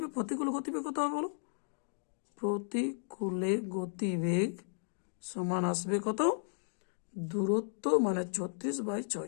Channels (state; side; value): silent; right; digital silence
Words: প্রতিকূলে গতিবেগ কত হবে বলো, প্রতিকূলে গতিবেগ সমান আসবে কত, দূরত্ব মানে